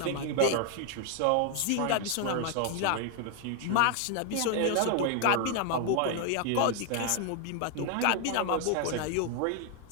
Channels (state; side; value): different; both; correlation 0.00